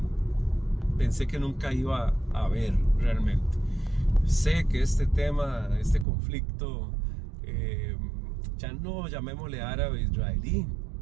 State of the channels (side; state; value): left; drops out; at 6.1 s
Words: pensé que nunca iba a ver realmente. Sé que este tema, este conflicto, eh, ya no llamémosle árabe-israelí,